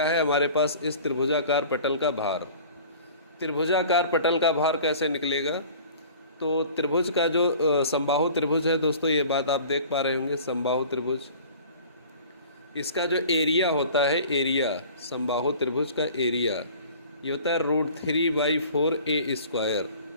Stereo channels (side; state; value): both; inverted; correlation -0.45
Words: है, हमारे पास इस त्रिभुजाकार पटल का भार। त्रिभुजाकार पटल का भार कैसे निकलेगा? तो त्रिभुज का जो समबाहु त्रिभुज है दोस्तों, ये बात आप देख पा रहे होंगे, समबाहु त्रिभुज, इसका जो एरिया होता है, एरिया समबाहु त्रिभुज का एरिया ये होता है √3/4a²।